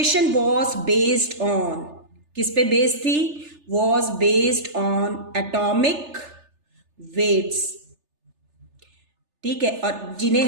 was based on, किस पे बेस्ड थी, was based on atomic weights. ठीक है, और जिन्हें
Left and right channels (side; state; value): left; late; 3.3 ms